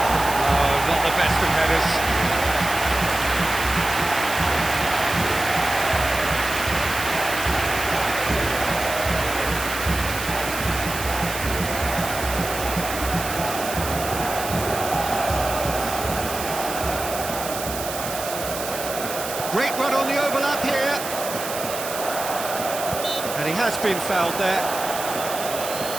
Great run on the overlap here. And he has been fouled there.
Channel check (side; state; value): right; noise; hiss, 7 dB below the sound